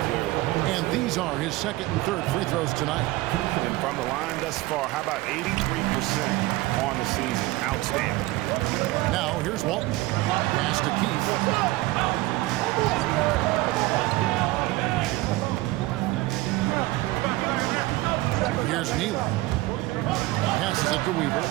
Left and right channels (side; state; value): left; quieter; 19.1 dB